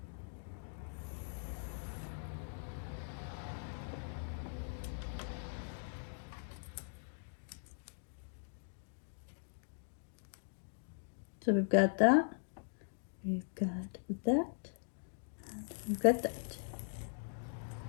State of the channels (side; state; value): right; silent; digital silence